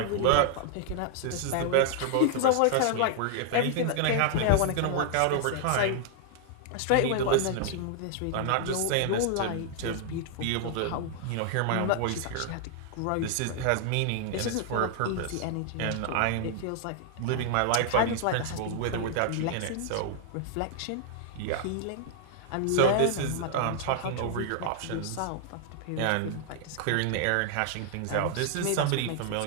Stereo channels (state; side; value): different; both; correlation 0.00